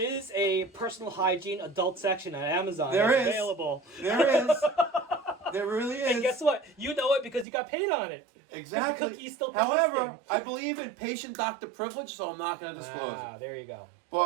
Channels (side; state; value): left; drops out; at 7.5 s